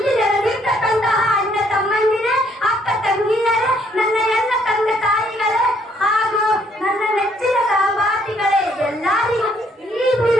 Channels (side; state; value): both; normal; correlation 0.67